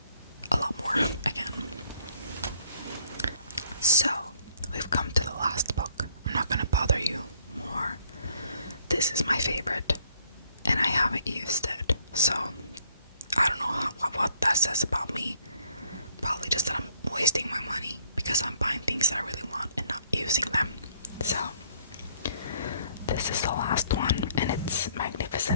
a lot more again. So we've come to the last book. I'm not going to bother you more. This is my favorite, and I haven't used it. So I don't know what that says about me. Probably just that I'm wasting my money because I'm buying things that I really want and not using them. So this is the last one, and it's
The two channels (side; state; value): both; inverted; correlation -0.65